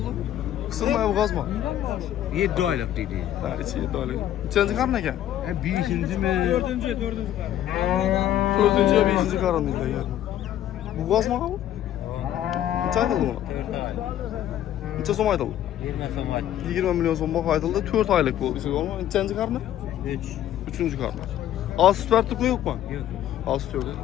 Kısılmaya bu gazma. 7 aylık dedi. Ha içi 7 aylık. İçenci karın ekan? Beşinci mi? Dördüncü. Dördüncü ya beşinci karın değil de yani. Bu gazma mı bu? Neçə aytıldı buna? 4 aylık. Neçə som aytıldı? 20 somat. 20 milyon som bax aytıldı. 4 aylık bu. Neçənci karını? 3. Üçüncü karını. Az süt verdik mi yok mu? Yok. Az süt yok.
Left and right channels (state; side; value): quieter; right; 11.8 dB